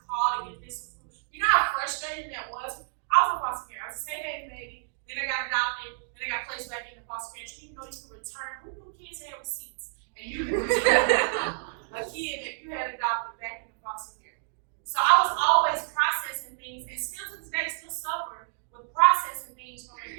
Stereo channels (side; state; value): left; silent; digital silence